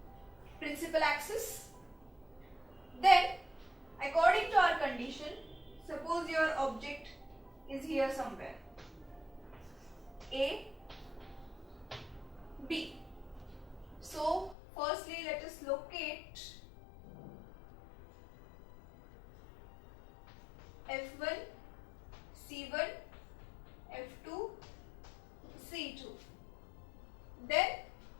principal axis. Then according to our condition, suppose your object is here somewhere, A, B. So Firstly, let us locate F1, C1, F2, C2. Then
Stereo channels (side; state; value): right; drops out; at 14.6 s